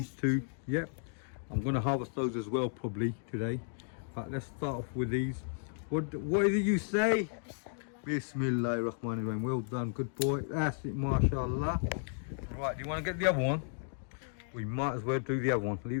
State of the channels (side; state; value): right; silent; digital silence